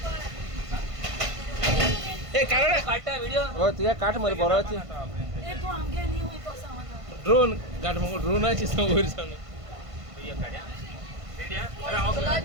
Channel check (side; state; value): left; late; 1.5 ms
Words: ए काढ काटा व्हिडिओ हो तुझ्या काठ मध्ये बोराची ये तो आगे नहीं हुई तो समझा ड्रोन काठ मग ड्रोनाची समोर सांग रेडिया